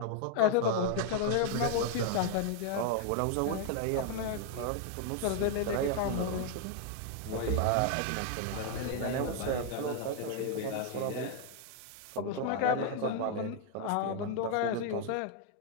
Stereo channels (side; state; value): both; different; correlation 0.00